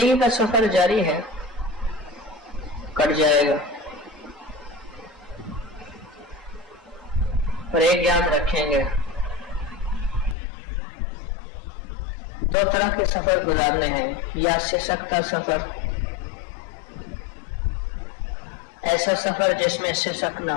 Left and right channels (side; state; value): right; drops out; at 10.4 s